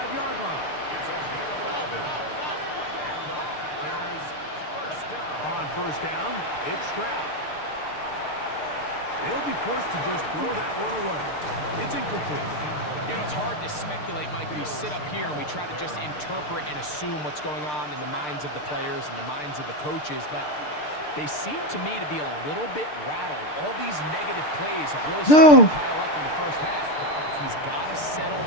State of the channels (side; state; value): right; late; 6.7 ms